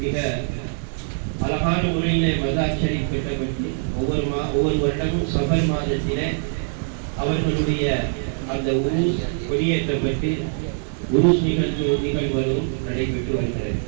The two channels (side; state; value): left; silent; 63 dB below the other